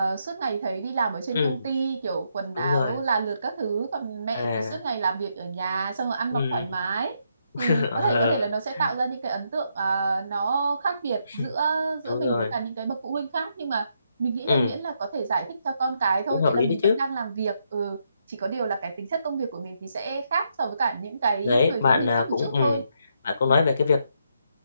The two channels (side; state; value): both; inverted; correlation -0.78